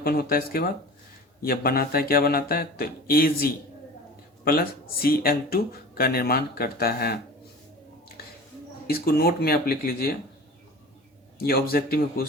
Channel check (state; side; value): normal; both; correlation 0.38